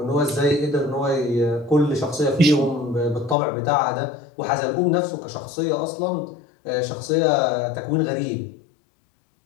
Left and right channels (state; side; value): drops out; right; at 3.4 s